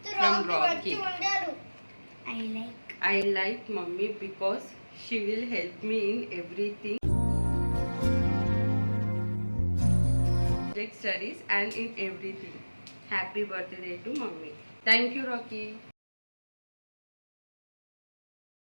From Rocky. I like mommy because she will help me in everything, studies and in everything. Happy birthday to mommy. Thank you, Rocky.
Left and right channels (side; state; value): both; inverted; correlation -1.00